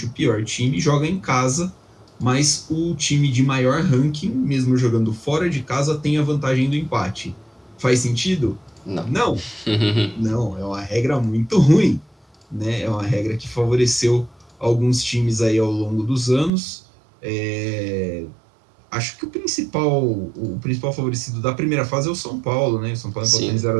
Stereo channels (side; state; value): left; drops out; at 16.5 s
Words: o pior time, joga em casa, mas o time de maior ranking, mesmo jogando fora de casa, tem a vantagem do empate. Faz sentido? Não. Não, não, é uma regra muito ruim, né? É uma regra que favoreceu alguns times aí ao longo dos anos. Acho que o principal favorecido da primeira fase é o São Paulo, né? O São Paulo empatou em Sim.